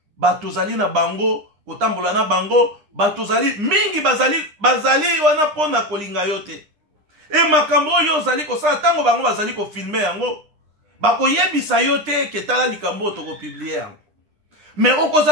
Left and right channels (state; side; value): late; left; 9.8 ms